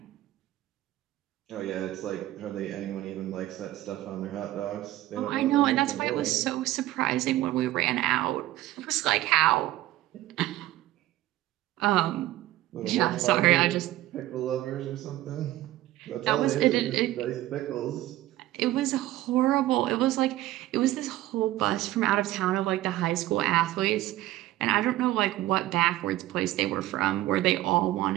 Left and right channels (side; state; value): left; quieter; 15.5 dB